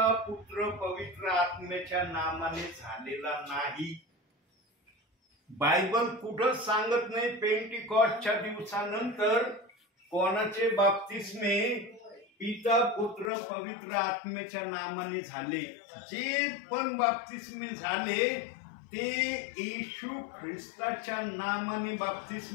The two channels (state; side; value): drops out; right; at 13.3 s